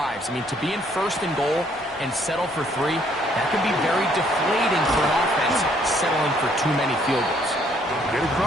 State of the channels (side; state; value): both; normal; correlation 0.66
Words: I mean, to be in 1st and goal and settle for 3, that can be very deflating for an offense settling for too many field goals. Get